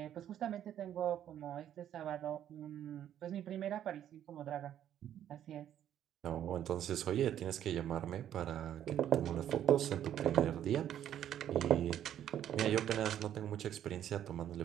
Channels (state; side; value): quieter; left; 10.6 dB